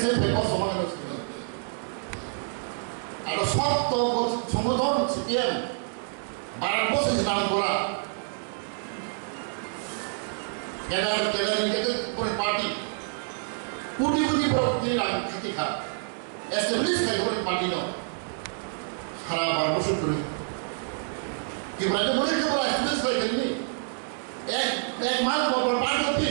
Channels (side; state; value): left; silent; digital silence